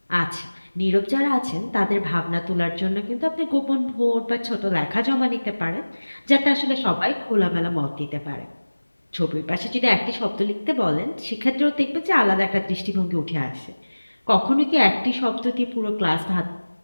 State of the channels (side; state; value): both; inverted; correlation -1.00